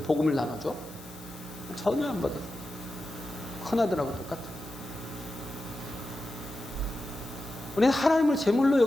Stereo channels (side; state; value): left; noise; hiss, 20 dB below the sound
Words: 나눠줘? 전혀 안 받아요. 큰아들하고 똑같아요. 우리는 하나님을 제물로